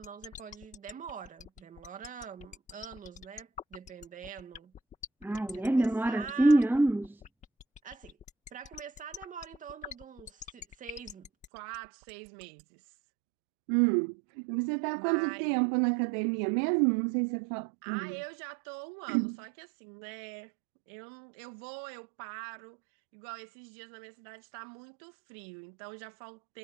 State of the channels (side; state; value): left; drops out; at 11.5 s